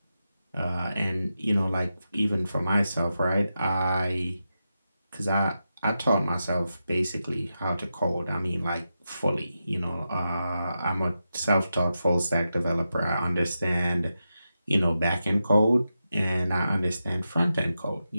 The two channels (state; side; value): inverted; both; correlation -0.89